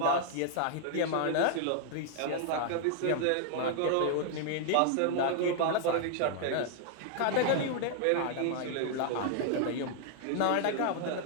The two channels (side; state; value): both; different; correlation 0.00